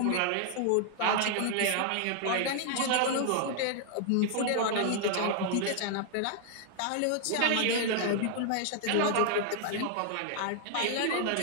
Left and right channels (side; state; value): both; different; correlation 0.00